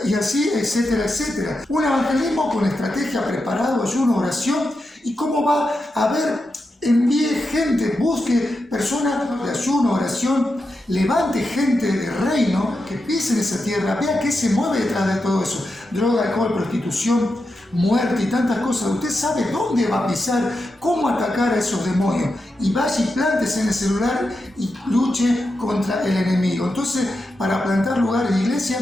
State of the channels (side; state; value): both; normal; correlation 0.88